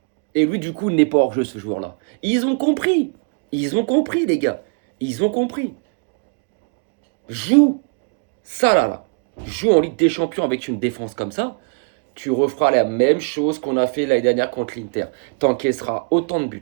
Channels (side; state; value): left; quieter; 37.7 dB